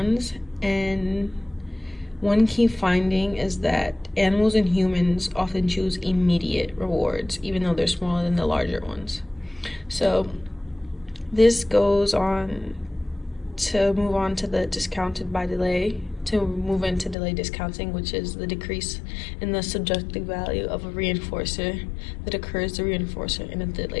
and one key finding is that animals and humans often choose immediate rewards, even though they're smaller than the larger ones. So this goes on to move on to the discounted by delay, to move into delay discounting, which is the decrease in the subjective value of a reinforcer that occurs to reinforcer in a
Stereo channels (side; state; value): right; drops out; at 17.2 s